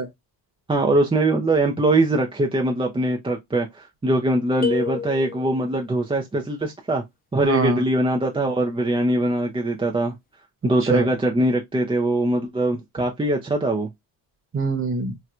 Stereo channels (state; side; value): normal; both; correlation 0.60